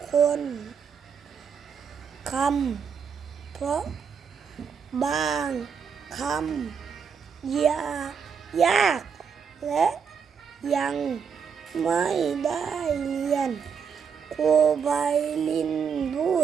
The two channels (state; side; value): quieter; left; 6.6 dB